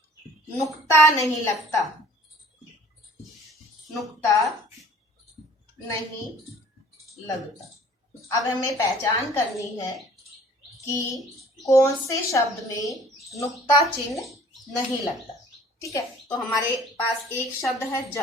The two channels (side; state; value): both; normal; correlation 0.52